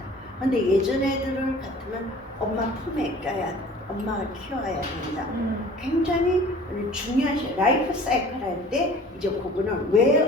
근데 예전 애들을 같으면 엄마 품에 껴야 엄마가 키워야 된다. 굉장히 중요한 라이프 사이클 할 때 이제 그거는 왜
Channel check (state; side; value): normal; both; correlation 0.46